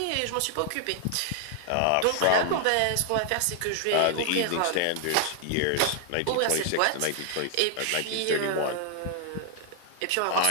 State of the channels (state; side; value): different; both; correlation 0.00